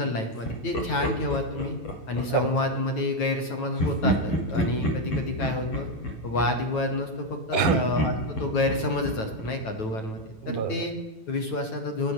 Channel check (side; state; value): right; late; 9.2 ms